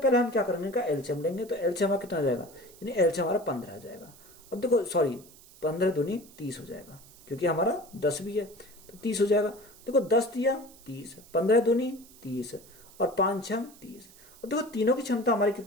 हम क्या करेंगे का एलसीएम लेंगे। तो एलसीएम हमारा कितना जाएगा, यानी एलसीएम हमारा 15 आ जाएगा। और देखो सॉरी 15 दूनी 30 हो जाएगा, क्योंकि हमारा 10 भी है तो 30 हो जाएगा। देखो 10 दिया 30, 15 दूनी 30 और 5 6 30। और देखो तीनों की क्षमता हमारी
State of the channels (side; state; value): right; noise; hiss, 23 dB below the sound